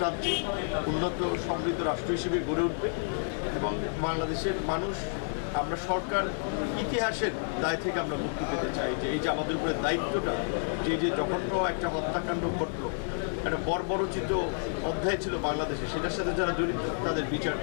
উন্নত সমৃদ্ধ রাষ্ট্র হিসেবে গড়ে উঠবে এবং বাংলাদেশের মানুষ, আমরা সরকার ইতিহাসের দায় থেকে আমরা মুক্তি পেতে চাই। যে এই যে আমাদের উপরে দায়িত্বটা, যে জঘন্য একটা হত্যাকাণ্ড ঘটল, একটা বর্বরচিত অধ্যায় ছিল বাংলাদেশে, সেটার সাথে যারা জড়িত তাদের বিচার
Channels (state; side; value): silent; right; digital silence